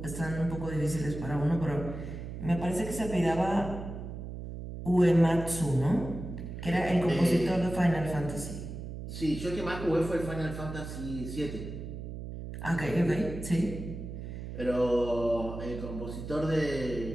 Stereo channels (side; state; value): right; noise; hum, 8 dB below the sound